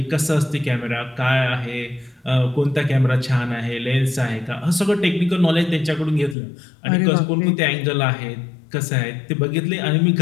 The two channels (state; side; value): drops out; right; at 6.4 s